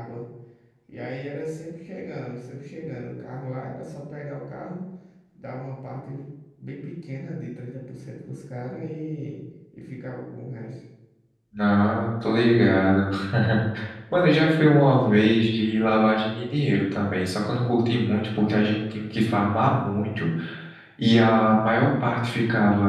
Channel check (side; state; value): both; identical; correlation 1.00